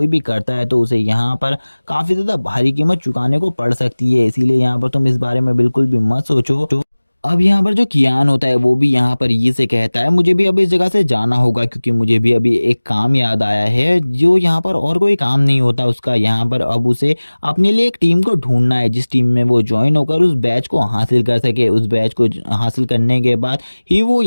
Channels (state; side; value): inverted; both; correlation -1.00